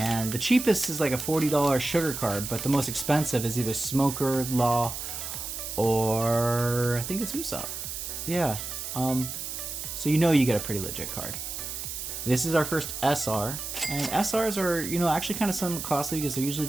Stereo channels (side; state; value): right; noise; hiss, 6 dB below the sound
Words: the cheapest is like a $40 sugar card, but the most expensive is either Smoker, Law, or I think it's Usopp. Yeah, so you know you get a pretty legit card. This is our first SR, and SRs are, you know, actually kind of somewhat costly because they're usually